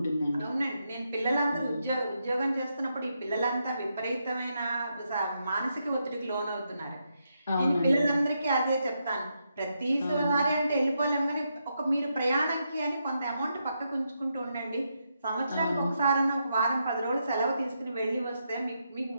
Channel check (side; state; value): both; inverted; correlation -0.82